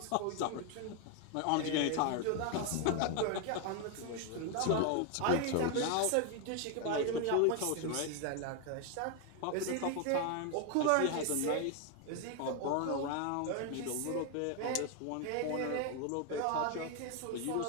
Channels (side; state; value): both; different; correlation 0.01